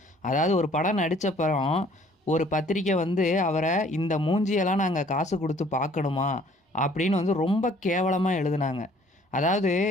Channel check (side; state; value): both; normal; correlation 0.57